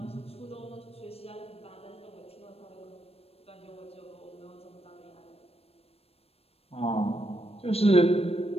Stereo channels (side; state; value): right; late; 0.28 ms